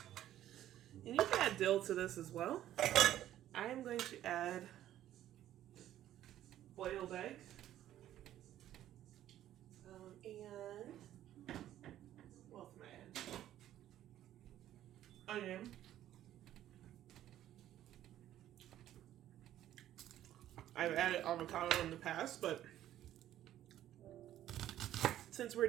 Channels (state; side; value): quieter; left; 12.4 dB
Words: And you can add dill to this as well. I am going to add boiled egg. And what else am I adding? Onion. I've added avocado in the past, but since we're